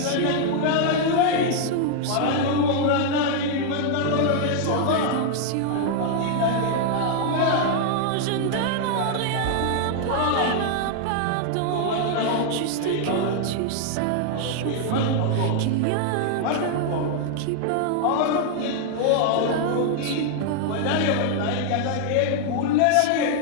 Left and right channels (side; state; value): both; different; correlation 0.00